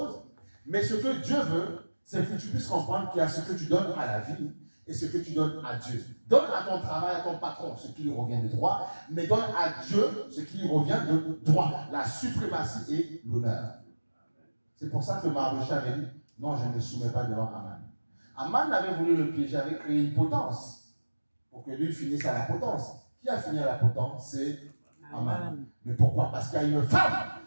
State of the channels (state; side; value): inverted; both; correlation -1.00